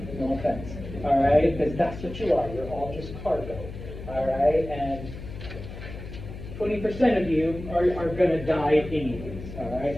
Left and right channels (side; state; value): left; noise; hum, 11 dB below the sound